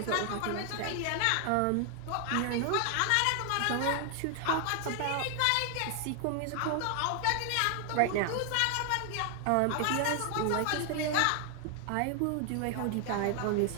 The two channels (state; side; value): different; both; correlation 0.00